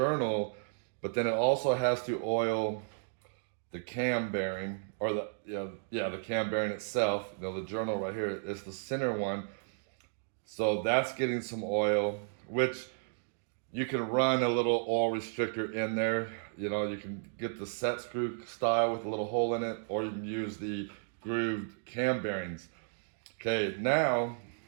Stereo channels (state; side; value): silent; left; digital silence